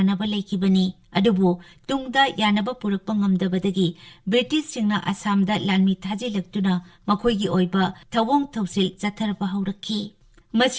ꯂꯩꯈꯤꯕꯅꯤ꯫ ꯑꯗꯨꯕꯨ ꯇꯨꯡꯗ ꯌꯥꯅꯕ ꯄꯨꯔꯛꯄ ꯉꯝꯗꯕꯗꯒꯤ ꯕ꯭ꯔꯤꯇꯤꯁꯁꯤꯡꯅ ꯑꯁꯥꯝꯗ ꯂꯥꯟꯃꯤ ꯊꯥꯖꯤꯜꯂꯛꯇꯨꯅ ꯃꯈꯣꯏꯒꯤ ꯑꯣꯏꯕ ꯊꯧꯑꯣꯡ ꯊꯧꯁꯤꯜ ꯆꯠꯊꯔꯕ ꯍꯧꯔꯛꯈꯤ꯫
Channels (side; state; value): both; identical; correlation 1.00